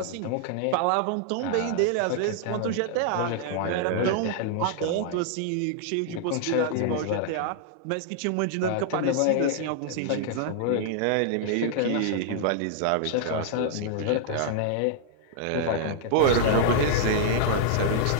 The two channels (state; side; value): different; both; correlation -0.01